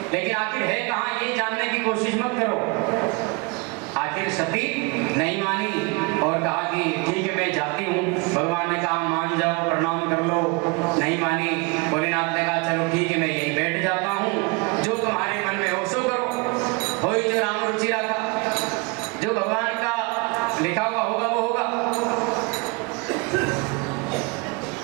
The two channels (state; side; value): quieter; left; 28.2 dB